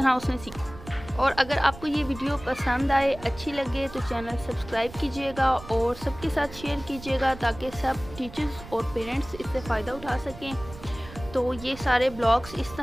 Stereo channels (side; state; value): right; noise; rumble, 15 dB below the sound